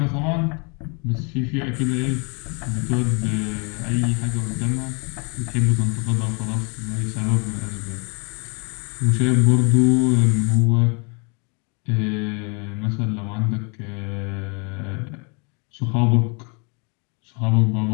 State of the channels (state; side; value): quieter; right; 34.2 dB